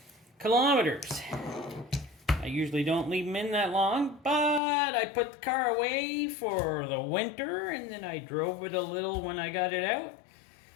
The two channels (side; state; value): right; drops out; at 4.6 s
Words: kilometers. I usually don't leave them in that long, but I put the car away for the winter and then I drove it a little when I got it out.